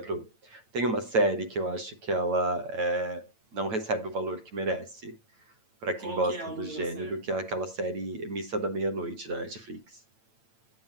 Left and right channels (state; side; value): late; left; 8.9 ms